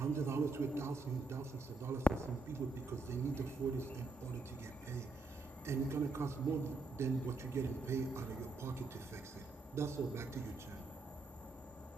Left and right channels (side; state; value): left; quieter; 3.3 dB